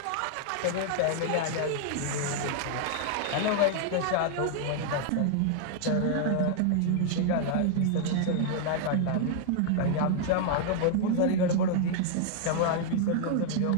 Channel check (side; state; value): both; different; correlation 0.00